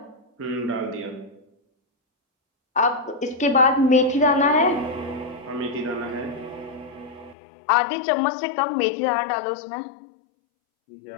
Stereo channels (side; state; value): right; drops out; at 7.4 s